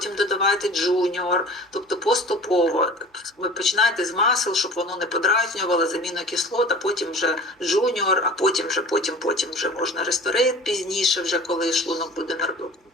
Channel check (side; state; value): both; normal; correlation 0.42